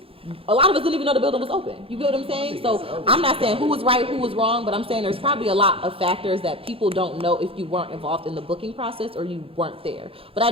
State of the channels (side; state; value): left; late; 0.27 ms